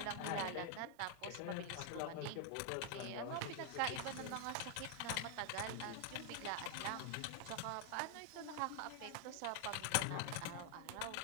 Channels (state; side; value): different; both; correlation 0.00